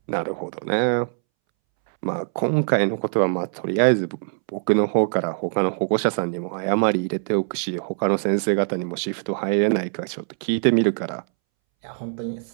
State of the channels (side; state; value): left; silent; 63 dB below the other